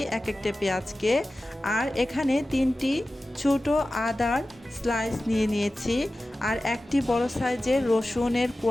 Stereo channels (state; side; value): normal; both; correlation 0.95